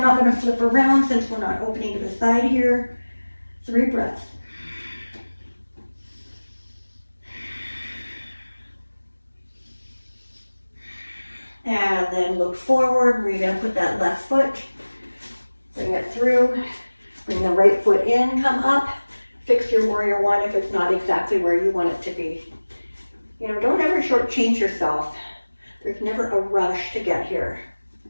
not going to flip around since we're not opening to the side here. 3 breaths. And then look forward, where you're gonna put that left foot. Bring it through, bring the right foot in, come up. Fix your warrior one if it's not exactly where you want it to be. You know, don't ever shortchange yourself. There's never a rush to get here.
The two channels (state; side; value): inverted; both; correlation -1.00